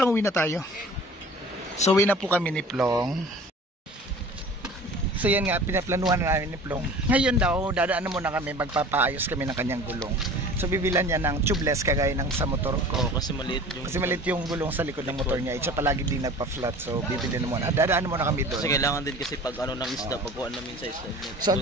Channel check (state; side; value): normal; both; correlation 0.42